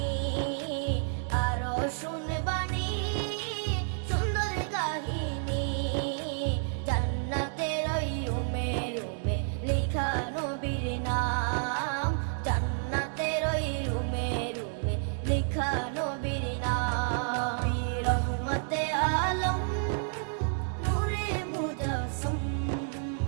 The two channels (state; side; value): silent; left; 58 dB below the other